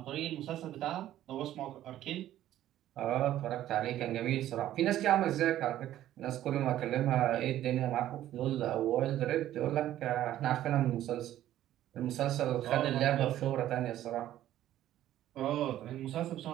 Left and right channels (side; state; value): left; quieter; 12.9 dB